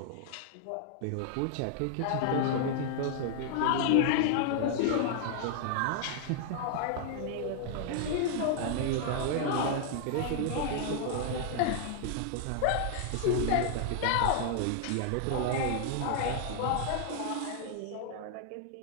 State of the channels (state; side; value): different; both; correlation 0.00